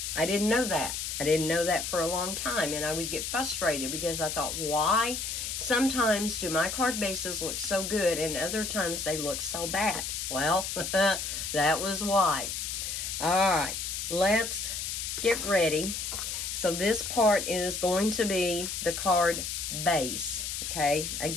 didn't know that. I didn't know that for a long time, and I would get frustrated because I thought, why sometimes do my card bases look so good and other times they look so bad? Well, that was why. All right, let's get ready. So this part is going to be the card base, okay?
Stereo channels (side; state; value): left; noise; hiss, 4 dB below the sound